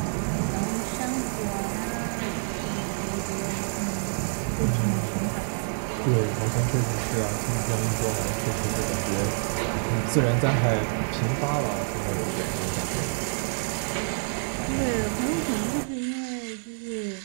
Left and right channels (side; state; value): left; silent; digital silence